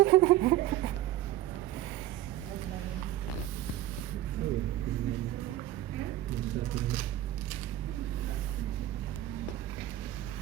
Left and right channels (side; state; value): left; quieter; 13.9 dB